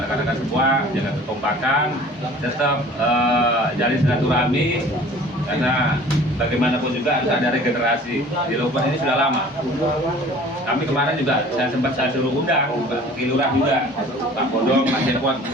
semua jaga kekompakan, tetap jalin silaturahmi, karena bagaimanapun juga harus ada regenerasi. Di Lombok ini sudah lama. Kami kemarin juga saya suruh undang Pak Kilurah juga, Pak Bodong, Pak Cepot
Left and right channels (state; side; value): normal; both; correlation 0.47